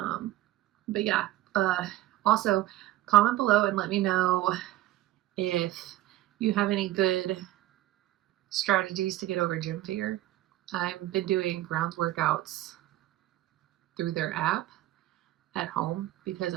yeah, also comment below and let me know if you have any good strategies to get over gym fear. I've been doing grounds workouts through their app at home because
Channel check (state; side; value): quieter; left; 15.2 dB